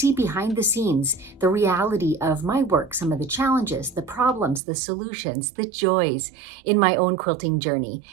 behind the scenes the reality of my work, some of the challenges, the problems, the solutions, the joys in my own quilting journey.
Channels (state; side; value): drops out; left; at 4.6 s